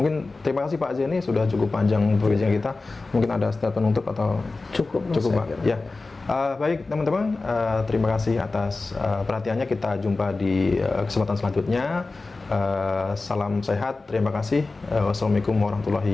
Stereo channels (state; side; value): quieter; right; 3.6 dB